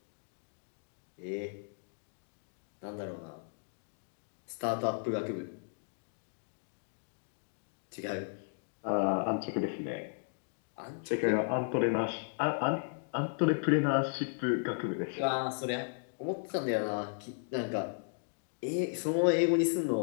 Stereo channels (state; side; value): silent; right; digital silence